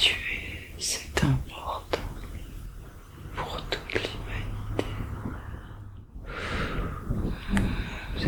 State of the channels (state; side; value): identical; both; correlation 1.00